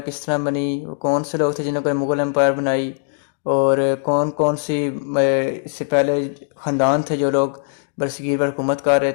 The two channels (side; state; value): right; silent; 66 dB below the other